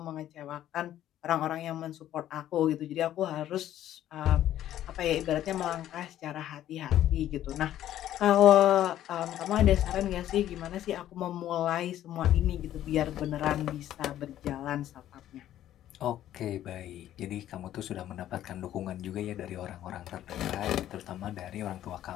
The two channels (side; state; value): right; quieter; 12.3 dB